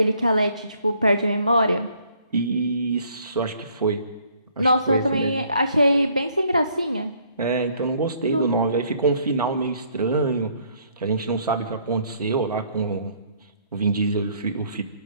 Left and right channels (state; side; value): inverted; both; correlation -0.64